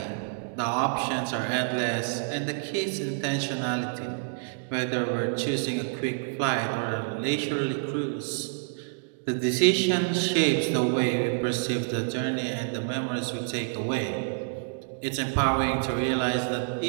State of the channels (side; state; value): left; silent; digital silence